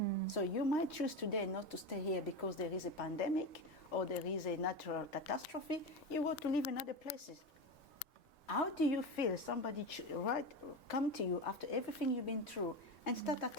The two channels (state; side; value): normal; both; correlation 0.20